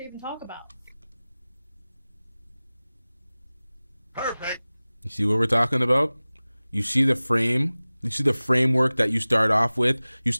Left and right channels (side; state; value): both; inverted; correlation -0.98